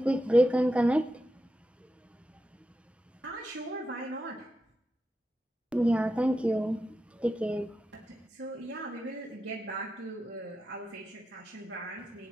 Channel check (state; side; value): normal; both; correlation 0.89